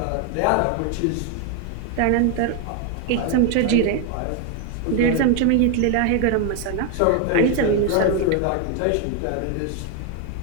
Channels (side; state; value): both; different; correlation 0.01